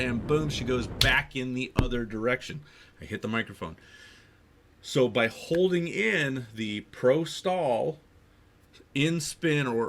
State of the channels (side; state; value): both; identical; correlation 1.00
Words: boom, she goes back in the other direction. I hit the microphone. So by holding in the pro stall in spin,